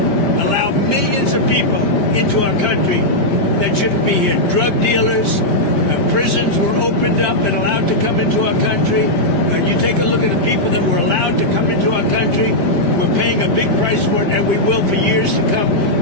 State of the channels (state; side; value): late; right; 5.1 ms